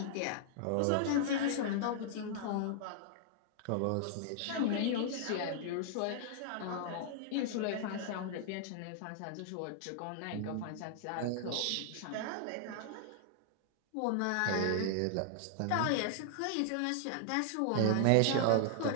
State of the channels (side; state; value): both; different; correlation -0.01